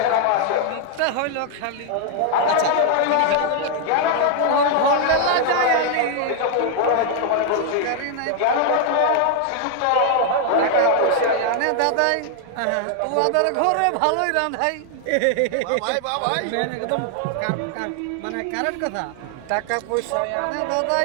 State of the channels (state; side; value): different; both; correlation 0.00